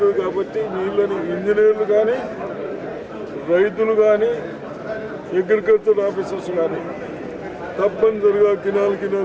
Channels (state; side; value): identical; both; correlation 1.00